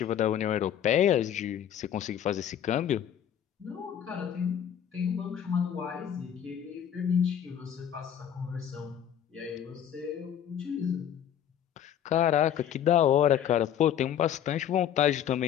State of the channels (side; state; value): right; quieter; 9.7 dB